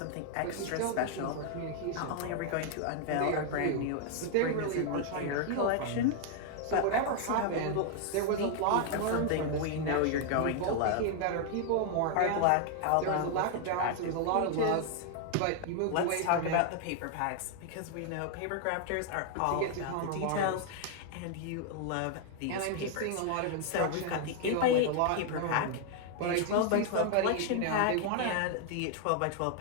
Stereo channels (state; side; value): different; both; correlation 0.00